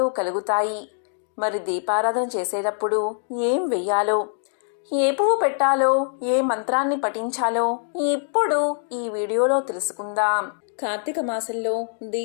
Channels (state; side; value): silent; right; digital silence